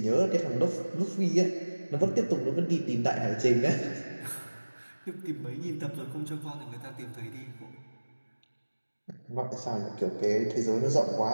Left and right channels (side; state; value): both; inverted; correlation -1.00